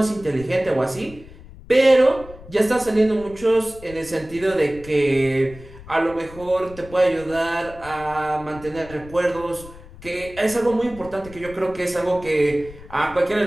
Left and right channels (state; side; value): noise; left; rumble, 18 dB below the sound